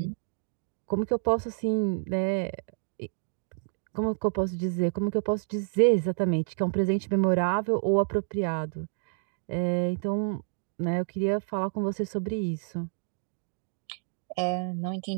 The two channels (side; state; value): left; silent; 58 dB below the other